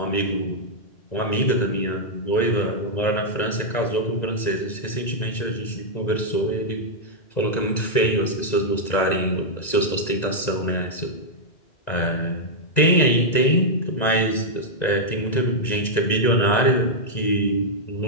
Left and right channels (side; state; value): right; late; 2.0 ms